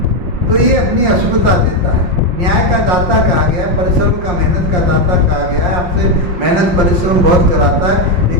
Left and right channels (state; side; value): late; left; 5.6 ms